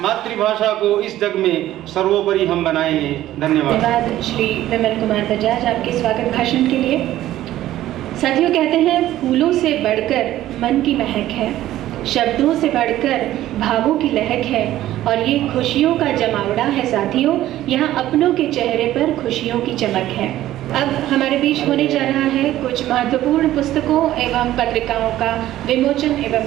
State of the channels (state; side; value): quieter; left; 14.0 dB